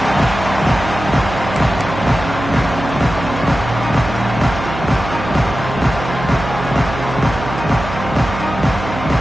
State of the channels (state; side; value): noise; right; hum, 9 dB below the sound